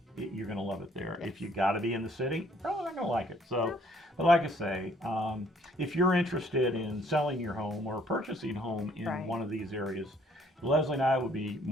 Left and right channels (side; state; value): both; normal; correlation 0.63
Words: you're going to love it there. If you got to be in the city, probably not going to like it. So, but like I say, if you're interested in selling your home or purchasing a home in one of these areas, Leslie and I would be